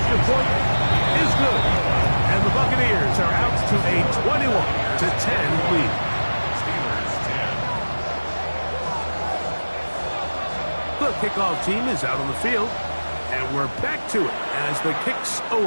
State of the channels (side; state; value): both; inverted; correlation -1.00